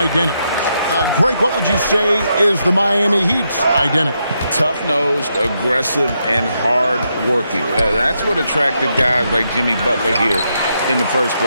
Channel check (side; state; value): both; inverted; correlation -0.81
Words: Greg, what would you say is the Miami Heat's identity? Tough-nosed, aggressive, and hard-working. That's what attracted guys like Jimmy Butler here in the first